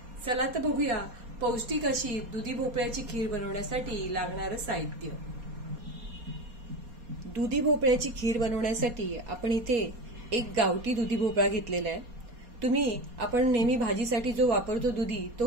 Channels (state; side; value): late; left; 4.2 ms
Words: चला तर बघूया पौष्टिक अशी दुधी भोपळ्याची खीर बनवण्यासाठी लागणारं साहित्य। दुधी भोपळ्याची खीर बनवण्यासाठी आपण इथे एक गावठी दुधी भोपळा घेतलेला आहे। तुम्ही आपण नेहमी भाजीसाठी जो वापरतो दुधी तो